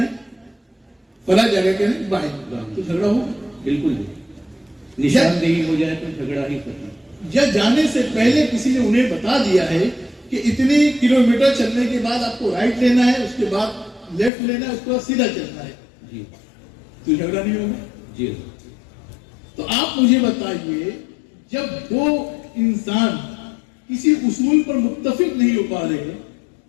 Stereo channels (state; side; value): drops out; right; at 14.3 s